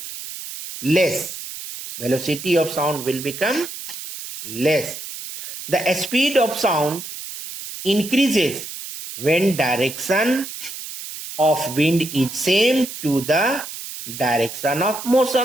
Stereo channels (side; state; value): right; noise; hiss, 10 dB below the sound